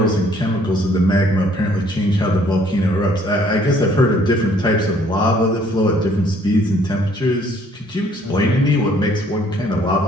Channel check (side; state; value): both; normal; correlation 0.61